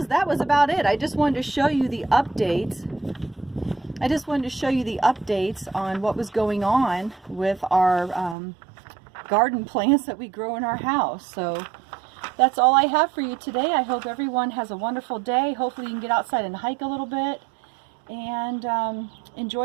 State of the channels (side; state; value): left; drops out; at 8.3 s